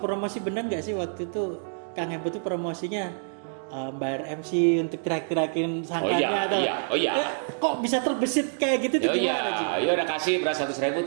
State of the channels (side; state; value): left; silent; digital silence